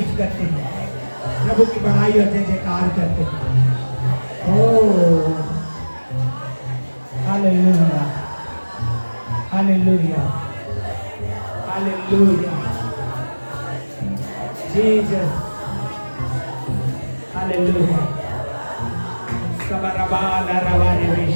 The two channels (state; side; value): inverted; both; correlation -1.00